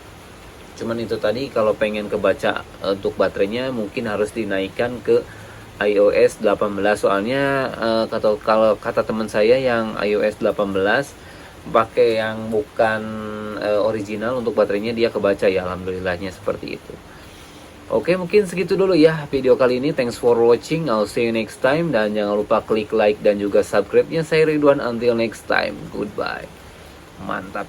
Cuman itu tadi, kalau pengen kebaca untuk baterainya mungkin harus dinaikkan ke iOS 18, soalnya kalau kata teman saya yang iOS 18 pakai yang bukan original untuk baterainya, dia kebaca ya, alhamdulillahnya seperti itu. Oke, mungkin segitu dulu ya video kali ini. Thanks for watching, I'll see you next time, dan jangan lupa klik like dan juga subscribe-nya. Saya Ridwan, until next time, goodbye.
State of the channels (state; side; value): identical; both; correlation 1.00